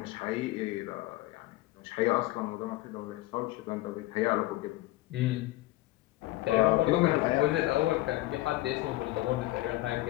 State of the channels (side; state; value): right; quieter; 18.0 dB